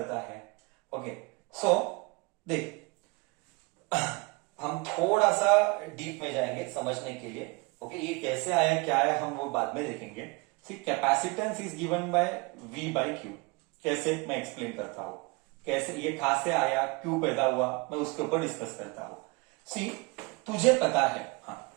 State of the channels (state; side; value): quieter; left; 27.0 dB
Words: है। ओके, सो देख हम थोड़ा सा डीप में जाएंगे समझने के लिए। ओके, ये कैसे आया क्या है हम वो बाद में देखेंगे। C capacitance is given by V by Q। कैसे, मैं एक्सप्लेन करता हूं कैसे ये कहां से आया, क्यों पैदा हुआ, मैं उसके ऊपर डिस्कस करता हूं। सी तुझे पता है, हाँ